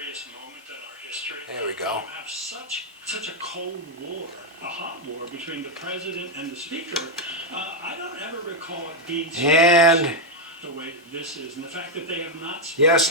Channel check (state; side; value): normal; both; correlation 0.01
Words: moment in our history. There we go. You have such a cold war, a hot war between the president and the speaker. I don't ever recall it being so And the way this is, and the fact that they have not.